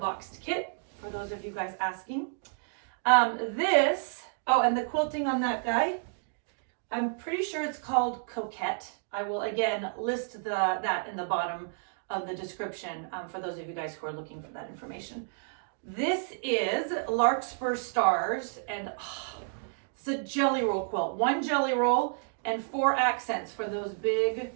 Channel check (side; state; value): left; silent; digital silence